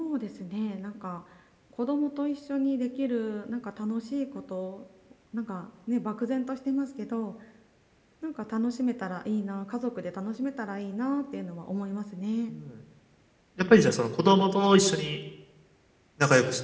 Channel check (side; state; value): both; identical; correlation 1.00